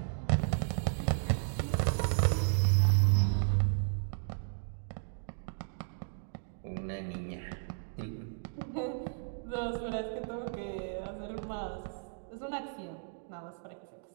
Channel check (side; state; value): left; silent; digital silence